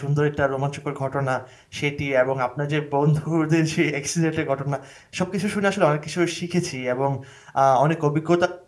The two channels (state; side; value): identical; both; correlation 1.00